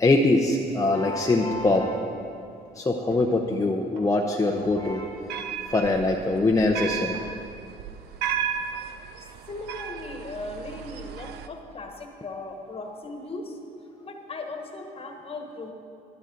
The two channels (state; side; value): normal; both; correlation 0.65